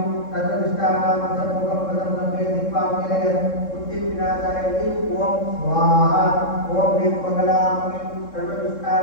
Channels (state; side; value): late; right; 3.7 ms